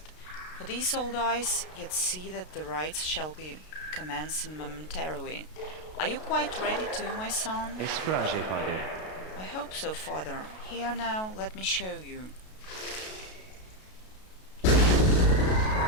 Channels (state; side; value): late; right; 32 ms